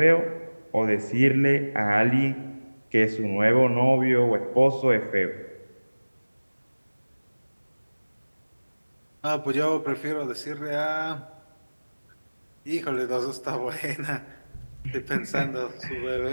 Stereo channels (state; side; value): inverted; both; correlation -1.00